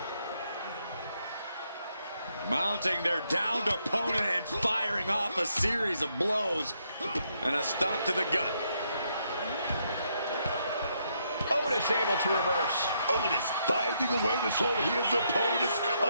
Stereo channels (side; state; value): both; inverted; correlation -0.76